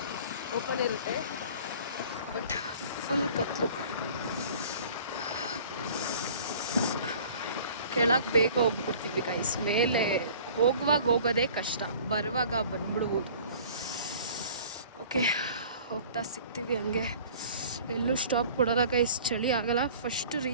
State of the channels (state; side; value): inverted; both; correlation -0.47